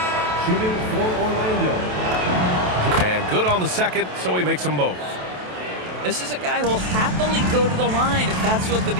Shooting for Orlando. And good on the second, so he makes them both. This is a guy who will happily go to the line if that's what the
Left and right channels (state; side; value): late; left; 27 ms